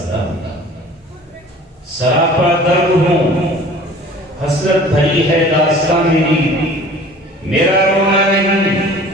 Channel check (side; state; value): both; normal; correlation 0.46